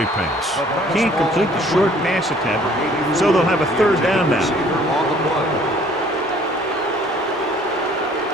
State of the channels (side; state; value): both; normal; correlation 0.56